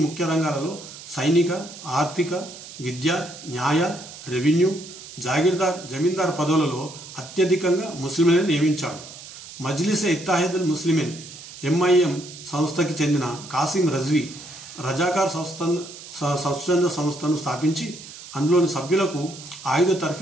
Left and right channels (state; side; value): noise; right; hiss, 15 dB below the sound